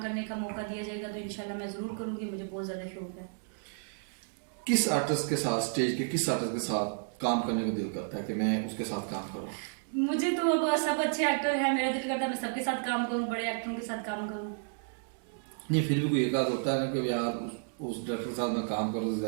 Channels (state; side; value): silent; left; digital silence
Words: करने का मौका दिया जाएगा तो इंशाल्लाह मैं ज़रूर करूँगी, मुझे बहुत ज़्यादा शौक है। किस आर्टिस्ट के साथ, स्टेज के किस आर्टिस्ट के साथ काम करने को दिल करता है कि मैं उसके साथ काम करूँ? मुझे तो सब अच्छे एक्टर हैं, मेरा दिल करता है मैं सबके साथ काम करूँ, बड़े एक्टरों के साथ काम करूँ। नहीं, फिर भी कोई एक आध होता है ना कि यार उस डायरेक्टर के साथ मैं काम करूँ तो